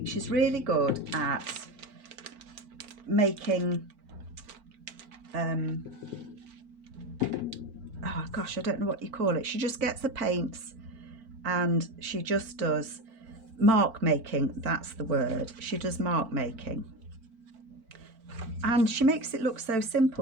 She's really good at making oh gosh, I don't know what you call it. She just gets the paints and she just does mark making. That's the word. She does mark making. And she makes it look so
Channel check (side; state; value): left; late; 4.4 ms